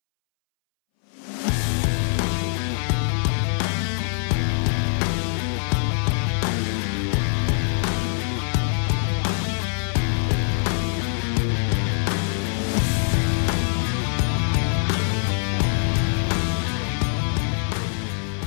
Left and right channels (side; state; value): right; silent; 63 dB below the other